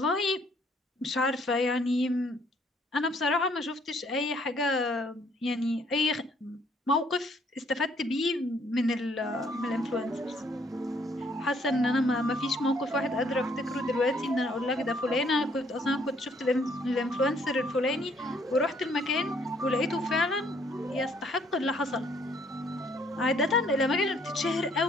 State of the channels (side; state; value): both; normal; correlation 0.65